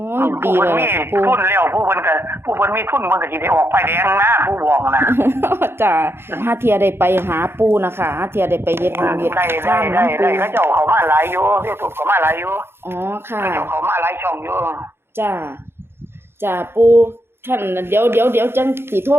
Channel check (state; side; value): late; left; 0.11 ms